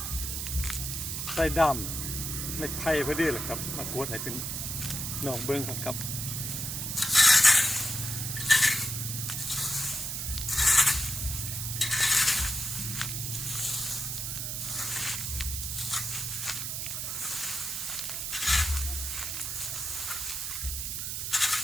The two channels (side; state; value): right; noise; hiss, 3 dB below the sound